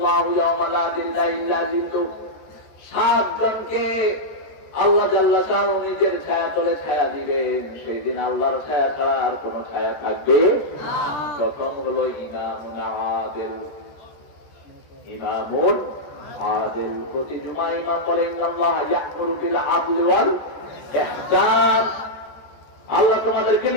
জনকে আল্লাহ জাল্লা শাআনহু নিজের ছায়া তলে ছায়া দিবেন। সেই দিন আল্লাহর ছায়া ছাড়া আর কোন ছায়া থাকবে? কত প্রথম হলো ইমামুন আদিল। ইমামুন আদিল, প্রতি জুমা ইমাম বলে ইন্নাল্লাহ ইয়া'মুরু বিল আদলি ওয়াল ইহসান। আল্লাহ তোমাদেরকে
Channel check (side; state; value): right; late; 14 ms